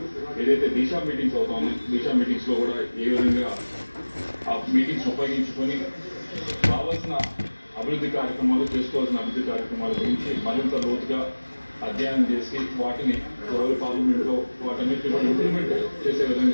ఏదైతే దిశా మీటింగ్స్ అవుతా ఉన్నాయి, దిశా మీటింగ్స్లో కూడా ఏ విధంగా ఆ మీటింగ్స్ ఉపయోగించుకొని కావాల్సిన అభివృద్ధి కార్యక్రమాలు, చేసుకోవాల్సిన అభివృద్ధి కార్యక్రమాల గురించి మరింత లోతుగా అధ్యయనం చేసి వాటిని ఎవరి పార్లమెంట్లో వాటన్నిటిని కూడా ఇంప్లిమెంట్ చేసే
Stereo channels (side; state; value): both; inverted; correlation -1.00